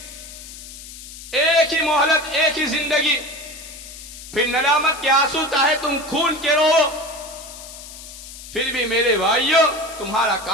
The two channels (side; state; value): left; noise; hiss, 15 dB below the sound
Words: ایک ہی مہلت، ایک ہی زندگی. پھر ندامت کے آنسو چاہے تم خون کے رو، پھر بھی میرے بھائیو تمہارا